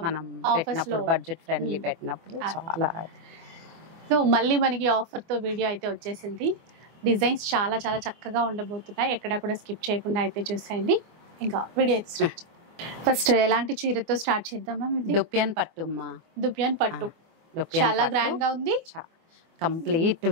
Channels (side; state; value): left; late; 24 ms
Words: మనం పెట్టినప్పుడు బడ్జెట్ ఫ్రెండ్లీ పెట్టినప్పుడు చాలా. సో మళ్ళీ మనకి ఆఫర్ తో వీడియో అయితే వచ్చేసింది. డిజైన్స్ చాలా చాలా చక్కగా ఉండబోతున్నాయి. ఎక్కడ కూడా స్కిప్ చేయకుండా అయితే చూసేయండి. ఇంకా వీడియో అయితే స్టార్ట్. ఫస్ట్ ఎలాంటి చీరతో స్టార్ట్ చేద్దామా? దుప్యాన్ పట్టుమ్మా. దుప్యాన్ పట్టు చాలా గ్రాండ్ గా ఉంది. Complete